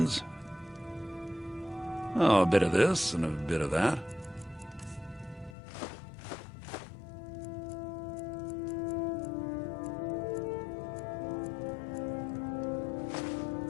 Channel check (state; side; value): drops out; right; at 5.6 s